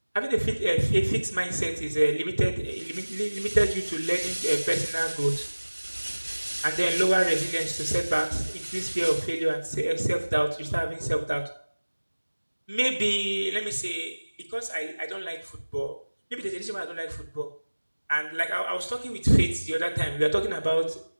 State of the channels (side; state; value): both; inverted; correlation -1.00